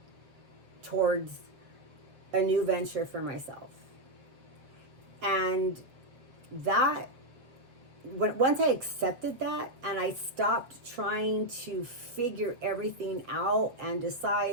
towards a new venture for myself. And that, once I accepted that and I stopped trying to figure everything out and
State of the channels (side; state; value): left; late; 7.5 ms